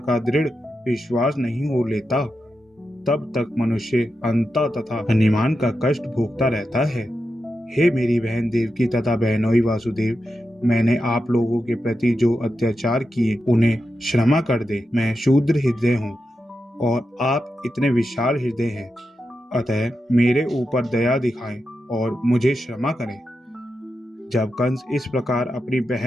दृढ़ विश्वास नहीं हो लेता, तब तक मनुष्य अंता तथा अनिमान का कष्ट भोगता रहता है। हे मेरी बहन देवकी तथा बहनोई वासुदेव, मैंने आप लोगों के प्रति जो अत्याचार किए उन्हें क्षमा कर दे। मैं शूद्र हृदय हूँ और आप इतने विशाल हृदय हैं, अतः मेरे ऊपर दया दिखाएं और मुझे क्षमा करें। जब कंस इस प्रकार अपनी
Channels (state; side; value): normal; both; correlation 0.89